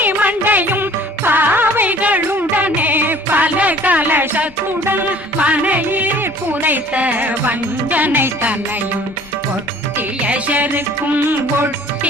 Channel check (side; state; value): left; noise; rumble, 27 dB below the sound